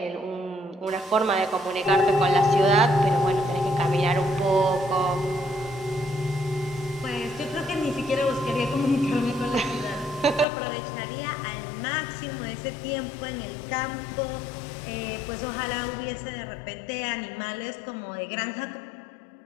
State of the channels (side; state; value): right; drops out; at 10.5 s